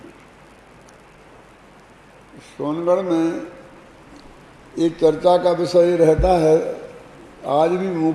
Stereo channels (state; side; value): identical; both; correlation 1.00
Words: सोनगढ़ में एक चर्चा का विषय रहता है आज भी